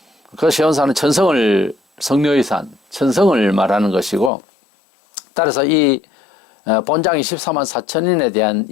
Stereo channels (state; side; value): drops out; right; at 4.3 s